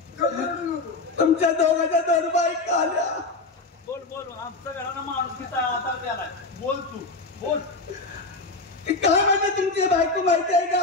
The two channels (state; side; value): quieter; right; 3.5 dB